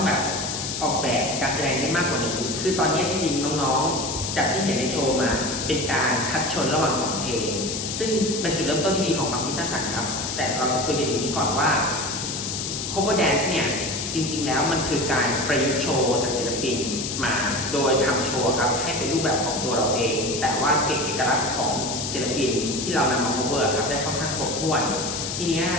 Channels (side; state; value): left; noise; hiss, 4 dB below the sound